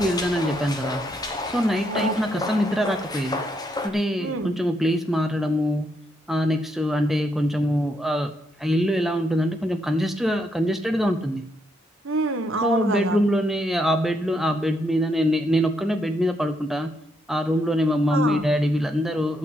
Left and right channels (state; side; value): normal; both; correlation 0.77